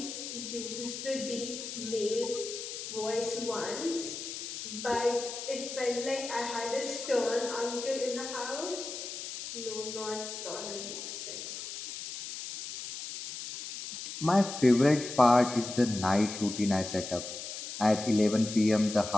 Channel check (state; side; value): noise; left; hiss, 8 dB below the sound